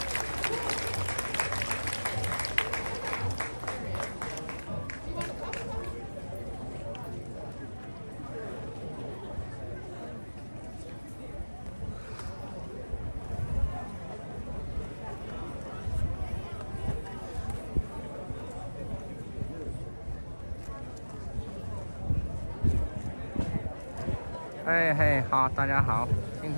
Hey, 好，大家好。今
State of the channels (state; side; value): inverted; both; correlation -1.00